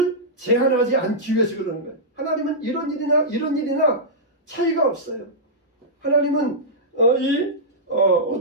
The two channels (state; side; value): normal; both; correlation -0.12